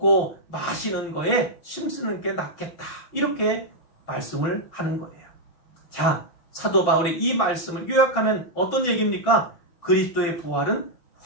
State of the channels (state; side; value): late; right; 6.3 ms